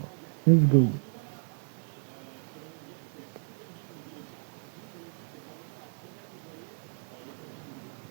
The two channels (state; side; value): quieter; left; 40.0 dB